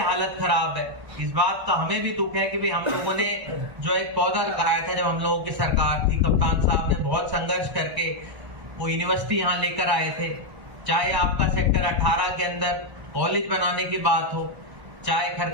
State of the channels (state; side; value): late; left; 1.0 ms